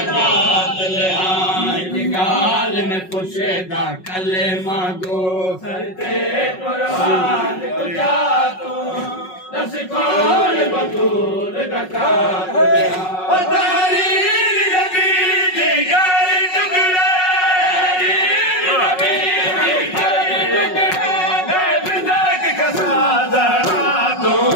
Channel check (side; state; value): right; late; 5.4 ms